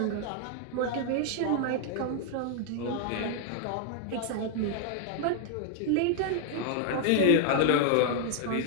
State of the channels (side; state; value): both; different; correlation 0.00